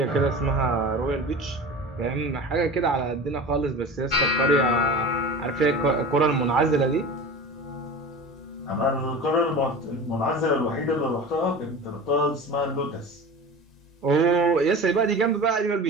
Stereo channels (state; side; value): normal; both; correlation 0.34